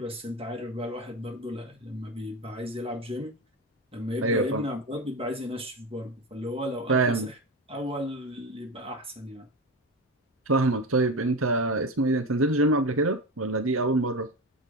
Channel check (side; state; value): both; normal; correlation 0.21